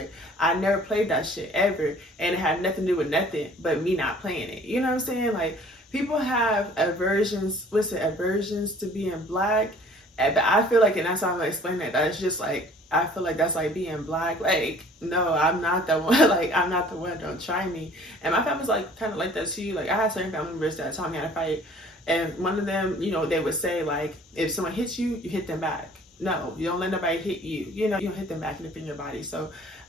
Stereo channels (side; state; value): both; normal; correlation 0.52